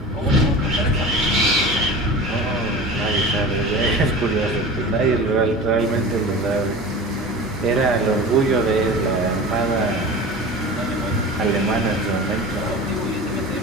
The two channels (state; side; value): normal; both; correlation 0.34